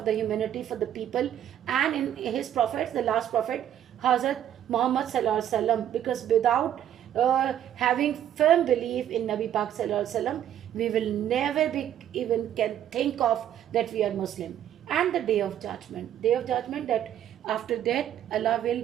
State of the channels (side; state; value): left; quieter; 10.7 dB